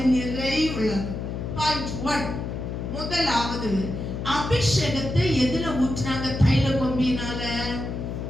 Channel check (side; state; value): left; noise; hum, 5 dB below the sound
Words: நிறைவுள்ளது. பாயிண்ட் 1. முதலாவது அபிஷேகத்தை எதுல ஊற்றினாங்க? தைல கொம்பினால